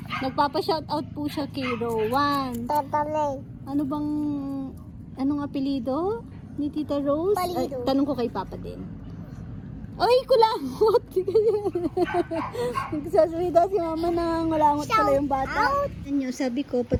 Nagpapa-shoutout po siya kay Rowan. Anong apelido ni Tita Rose? Ay, tanong ko kay Papa din. Ay, kulangot! Nagsasalita si Mama na ngulangot pala yung bata. Sabi ko,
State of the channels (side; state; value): both; identical; correlation 1.00